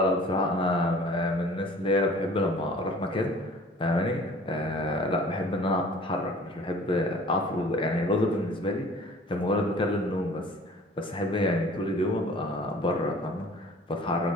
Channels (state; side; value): normal; both; correlation 0.48